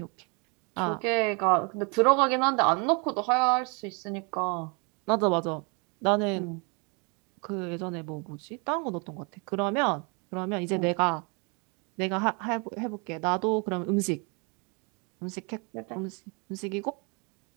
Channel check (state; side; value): quieter; left; 33.3 dB